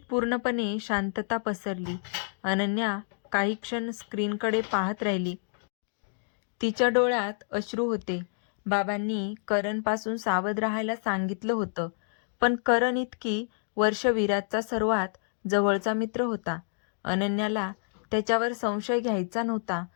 पूर्णपणे शांतता पसरली. अनन्या काही क्षण स्क्रीनकडे पाहत राहिली. तिच्या डोळ्यात अश्रू होते. बाबांनी करणपासून सावध राहायला सांगितलं होतं, पण करण इतकी वर्ष विराजचा सर्वात जवळचा मित्र होता. अनन्याला त्याच्यावर संशय घ्यायचा नव्हता.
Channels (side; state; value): right; silent; digital silence